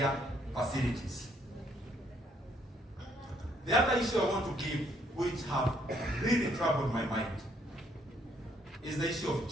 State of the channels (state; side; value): normal; both; correlation 0.68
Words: facilities. The other issue I want to give, which have really troubled my mind, is the issue of